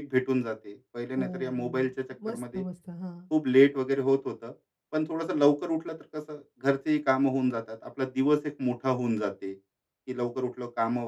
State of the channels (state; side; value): identical; both; correlation 1.00